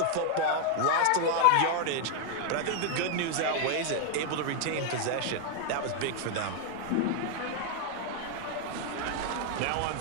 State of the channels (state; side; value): different; both; correlation 0.00